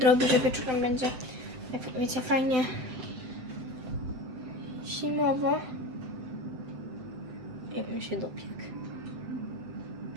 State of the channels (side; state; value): left; late; 7.9 ms